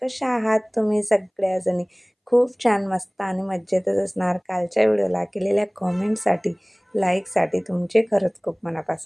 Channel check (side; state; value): both; identical; correlation 1.00